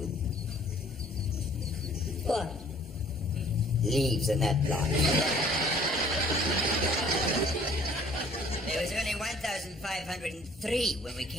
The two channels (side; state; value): both; normal; correlation 0.55